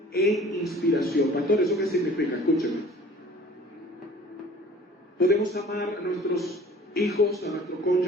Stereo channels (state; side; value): normal; both; correlation 0.48